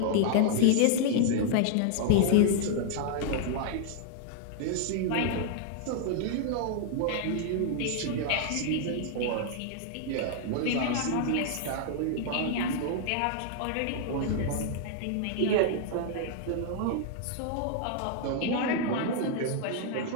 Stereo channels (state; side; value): different; both; correlation -0.01